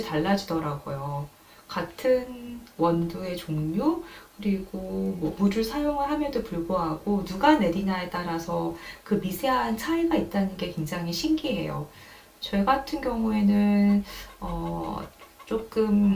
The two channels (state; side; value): identical; both; correlation 1.00